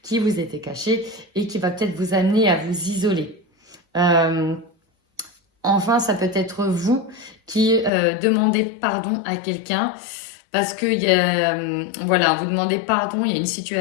qui vous était cachée et qui va peut-être vous amener à vous isoler. Enfin, ça peut être vous qui demandez pardon à quelqu'un parce que voilà, vous demandez pardon, il y a une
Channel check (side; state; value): right; drops out; at 7.9 s